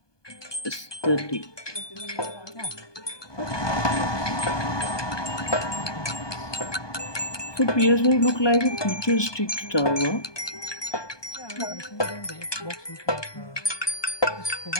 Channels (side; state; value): right; late; 1.2 ms